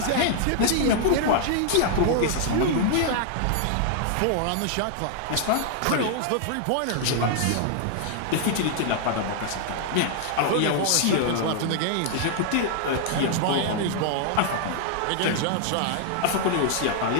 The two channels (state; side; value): different; both; correlation -0.01